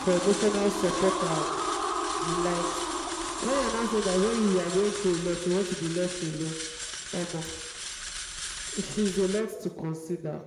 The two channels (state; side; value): identical; both; correlation 1.00